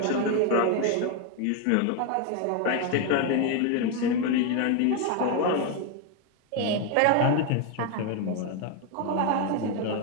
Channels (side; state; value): both; different; correlation 0.01